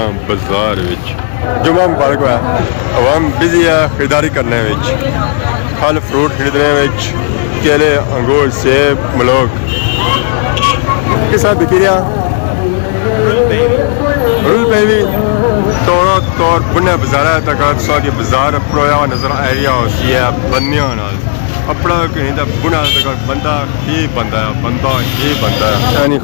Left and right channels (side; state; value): right; silent; 56 dB below the other